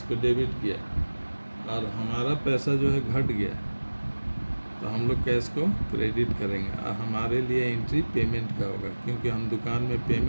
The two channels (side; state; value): both; inverted; correlation -1.00